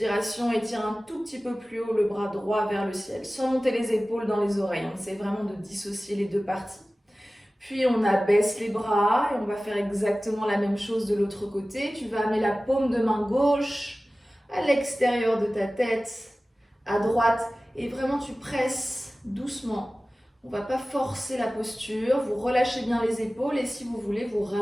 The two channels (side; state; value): both; normal; correlation 0.97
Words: étire un tout petit peu plus haut le bras droit vers le ciel, sans monter les épaules dans les oreilles. On essaie vraiment de dissocier les deux parties. Puis on abaisse les bras et on va faire exactement la même chose de l'autre côté. Tu vas amener la paume de main gauche à l'extérieur de ta tête, à droite, et vraiment tu presses doucement. On ne va pas forcer la posture, vous relâchez bien les épaules et si vous voulez, vous